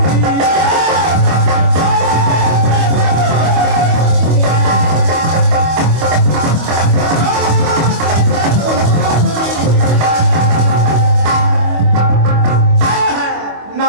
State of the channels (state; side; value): late; left; 25 ms